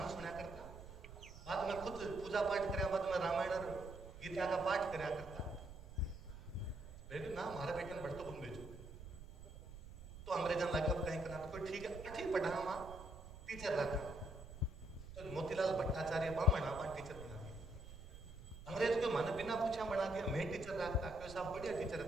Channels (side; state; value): right; noise; rumble, 14 dB below the sound